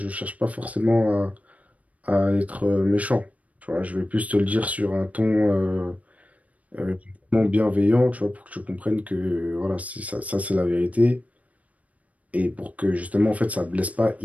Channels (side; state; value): left; late; 0.069 ms